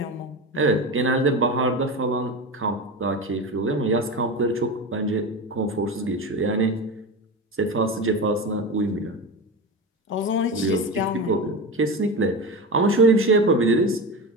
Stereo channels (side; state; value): both; normal; correlation 0.24